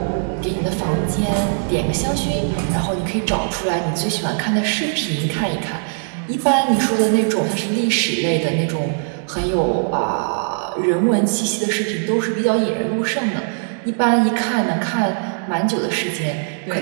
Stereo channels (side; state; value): left; silent; digital silence